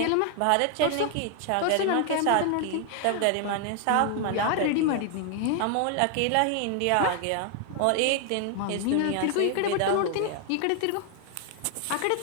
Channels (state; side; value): different; both; correlation 0.00